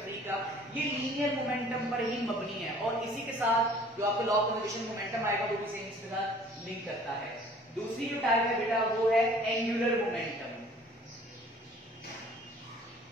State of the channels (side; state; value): both; normal; correlation 0.52